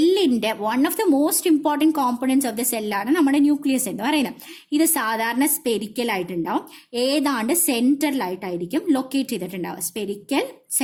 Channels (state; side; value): identical; both; correlation 1.00